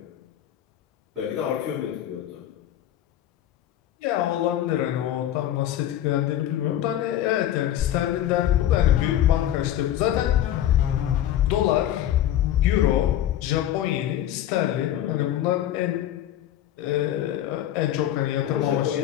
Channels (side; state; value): right; quieter; 12.0 dB